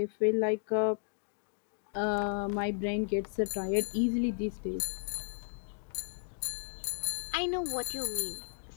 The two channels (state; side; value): silent; right; digital silence